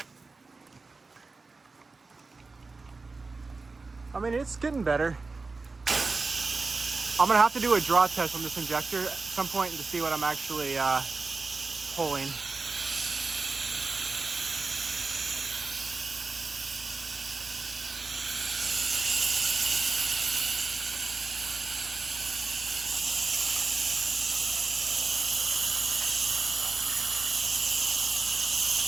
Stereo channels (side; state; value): left; quieter; 3.9 dB